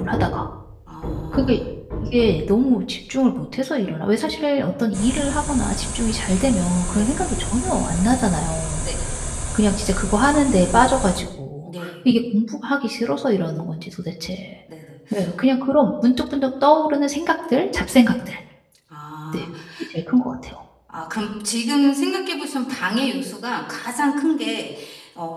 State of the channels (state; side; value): identical; both; correlation 1.00